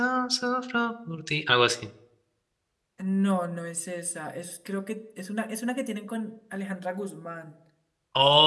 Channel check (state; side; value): identical; both; correlation 1.00